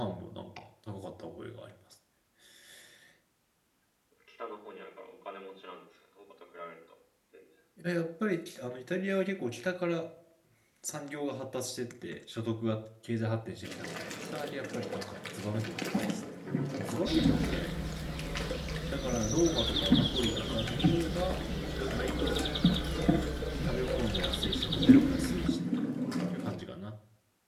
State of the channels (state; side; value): identical; both; correlation 1.00